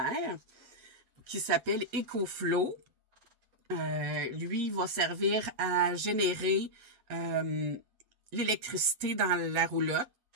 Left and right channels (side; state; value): left; late; 8.2 ms